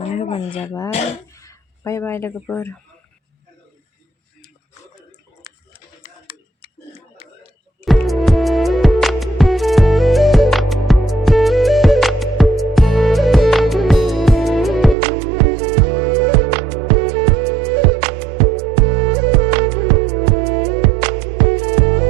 होबानो जाबाय बाय बाय लोगोफोर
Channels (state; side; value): drops out; left; at 15.0 s